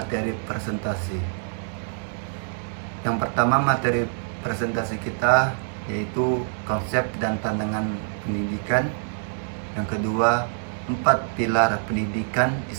presentasi. Yang pertama, materi presentasi kita yaitu konsep dan tantangan pendidikan. Yang kedua, 4 pilar pendidikan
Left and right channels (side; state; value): left; silent; digital silence